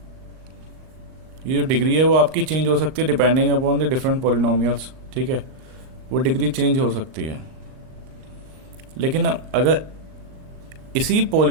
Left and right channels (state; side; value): late; left; 38 ms